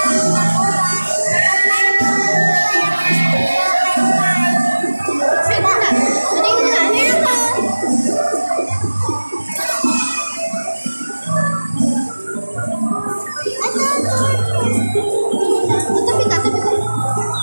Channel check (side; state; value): both; inverted; correlation -1.00